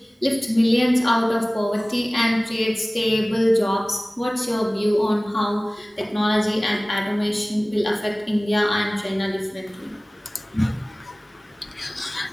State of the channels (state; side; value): normal; both; correlation 0.98